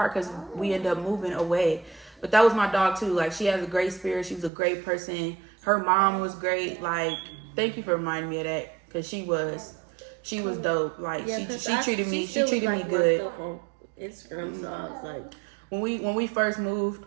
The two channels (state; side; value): drops out; left; at 4.5 s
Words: because we ended up moving away. But that was my dog too. Like she has a great spirit. She was a great person. Her mom was great. Like thank you for reminding me of that because she was dope. Like she treated me good. On Instagram, so I was like when we first moved